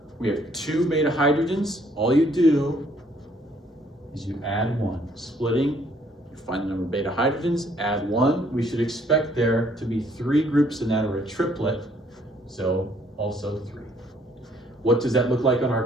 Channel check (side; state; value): both; normal; correlation 0.64